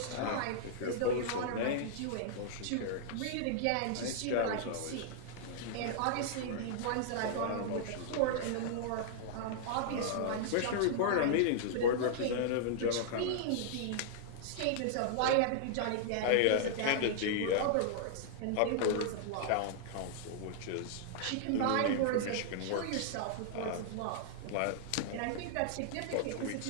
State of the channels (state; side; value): different; both; correlation -0.01